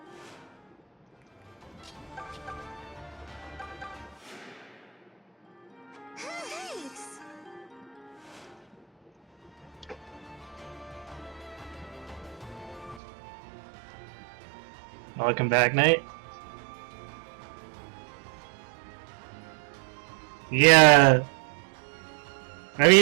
Thanks. Welcome back, Knight. Yeah. I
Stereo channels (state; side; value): drops out; left; at 13.0 s